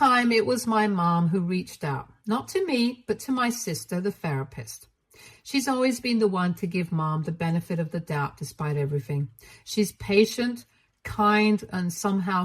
it was my mom who reached out, not to me, but to my sister, the therapist. She's always been the one to give Mom the benefit of the doubt despite everything. She's patient, kind, and somehow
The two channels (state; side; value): identical; both; correlation 1.00